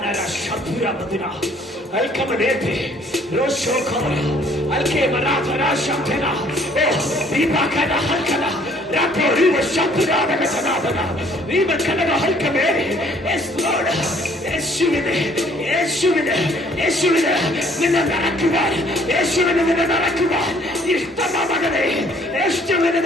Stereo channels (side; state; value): both; normal; correlation 0.60